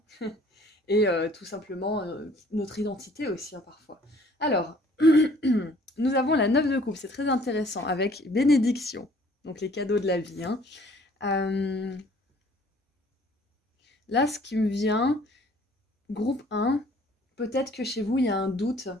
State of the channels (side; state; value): both; normal; correlation 0.56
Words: Et tout simplement notre identité aussi, hein, parfois. Alors, nous avons la 9 de coupe, c'est très intéressant, avec bénédiction, donc les cadeaux de la vie, hein. Là, ce qui me vient, groupe 1, peut-être que chez vous, il y a un doute